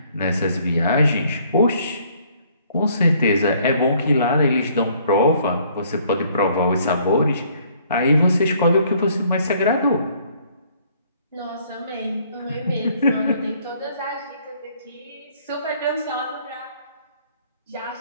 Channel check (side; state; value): both; inverted; correlation -0.62